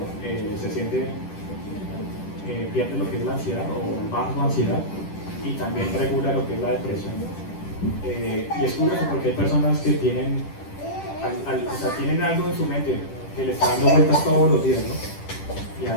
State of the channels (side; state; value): right; late; 10 ms